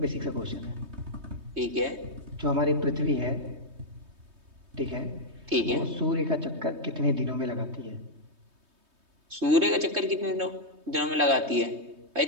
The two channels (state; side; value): late; left; 3.2 ms